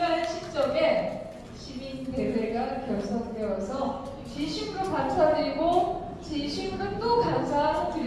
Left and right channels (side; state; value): both; identical; correlation 1.00